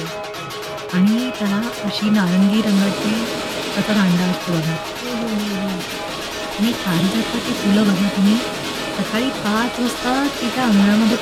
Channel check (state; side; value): identical; both; correlation 1.00